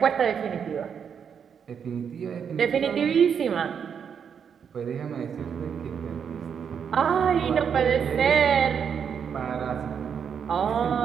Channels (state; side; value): quieter; left; 7.3 dB